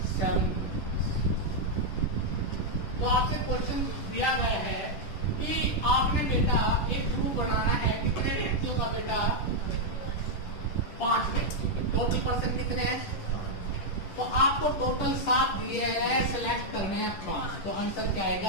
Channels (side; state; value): right; late; 10 ms